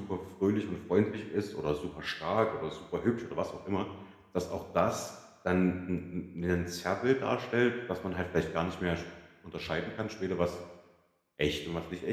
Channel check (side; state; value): both; identical; correlation 1.00